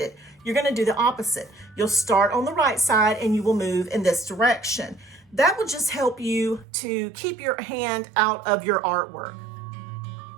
you're going to do the opposite. You'll start on the right side and you will move in this direction. That will just help you to keep your hand out of your artwork.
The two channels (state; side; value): drops out; left; at 6.7 s